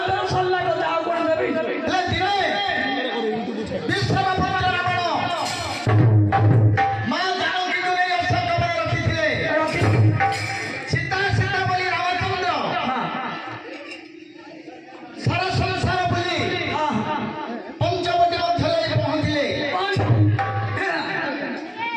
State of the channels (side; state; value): both; identical; correlation 1.00